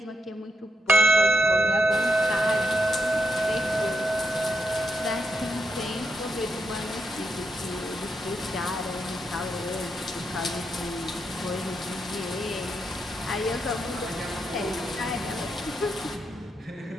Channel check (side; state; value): both; normal; correlation 0.82